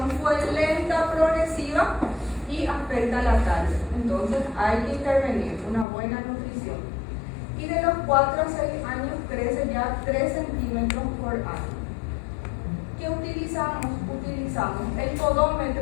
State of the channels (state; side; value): drops out; right; at 5.9 s